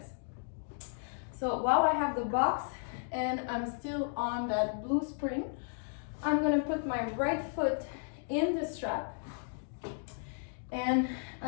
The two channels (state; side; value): silent; right; digital silence